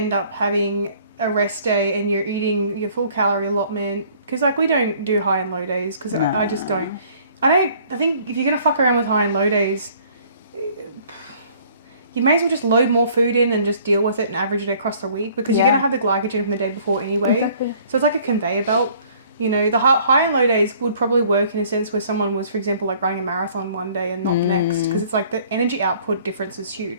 up having a rest day and you're eating your full calorie allotment, because, like, we don't do high and low days, because I just don't. I think if you're going to fuck around with high and low days, you may as well just load more food in and just deal with it and average it across the week, because you're going to have the glycogen from the day before anyway. Exactly. So it's like a conveyor belt. You know, the high and low days would probably work in a sense where someone was, for example, like running a marathon one day and not the next, because it's like the energy output difference is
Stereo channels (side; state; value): both; inverted; correlation -0.57